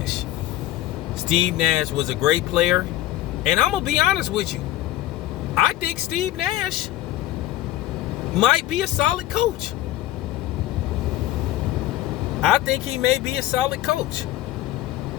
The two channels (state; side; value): quieter; right; 15.2 dB